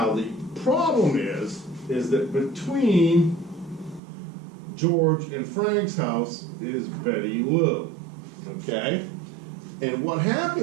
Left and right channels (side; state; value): left; drops out; at 4.0 s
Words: the problem is that between George and Frank's house is Betty Lou, okay? And what